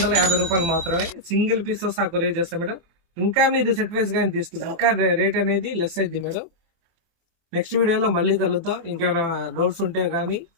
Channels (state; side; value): late; left; 24 ms